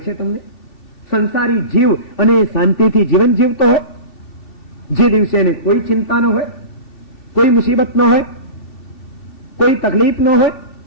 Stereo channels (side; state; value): right; late; 2.7 ms